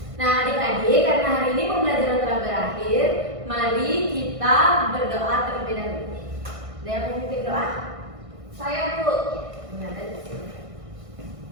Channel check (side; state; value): left; late; 1.6 ms